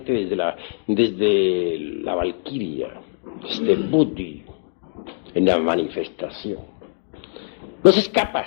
desde la Valquiria, desde Buddhi, en la manifestación. No se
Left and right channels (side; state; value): right; silent; digital silence